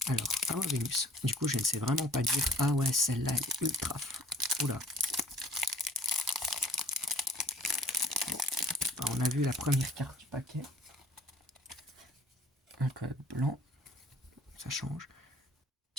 Alors, Awa Venus, du coup je ne sais vraiment pas dire, ah ouais celle-là elle est ultra, oula. Bon. Alors, on a vu la première carte du paquet, un code blanc, ça change,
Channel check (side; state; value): both; normal; correlation 0.52